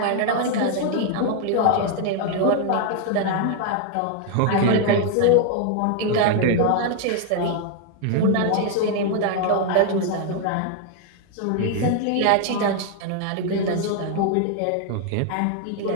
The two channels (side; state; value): both; different; correlation 0.00